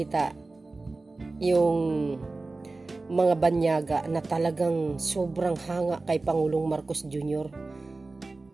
yung mga banyaga na talagang sobrang hanga kay Pangulong Marcos Jr.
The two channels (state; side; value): quieter; left; 3.4 dB